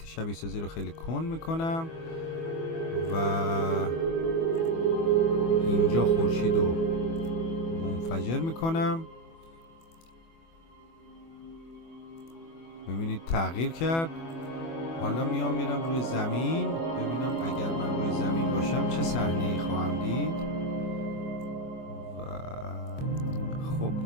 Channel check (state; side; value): late; right; 24 ms